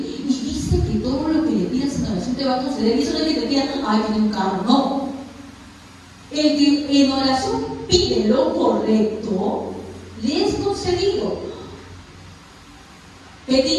Y dice que todo lo que le pidas en oración te va a conceder. Y eso no es que te pidan, ay, tiene un carro, no. El que en oración pide lo correcto, le es concedido.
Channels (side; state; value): both; identical; correlation 1.00